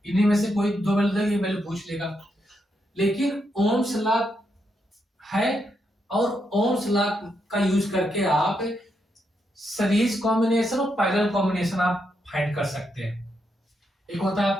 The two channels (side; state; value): both; normal; correlation 0.81